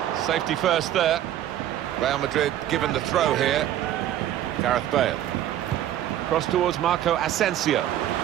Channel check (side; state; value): left; quieter; 12.0 dB